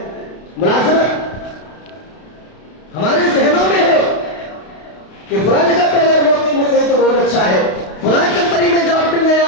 ملازمت ہمارے ذہنوں میں ہے کہ فلاں جگہ پہ اگر نوکری مل گئی تو بہت اچھا ہے، فلاں کمپنی میں جاب مل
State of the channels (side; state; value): right; late; 32 ms